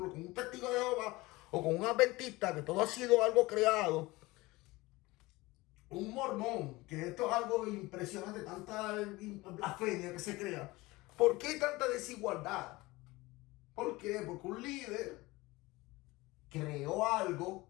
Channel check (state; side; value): quieter; right; 21.0 dB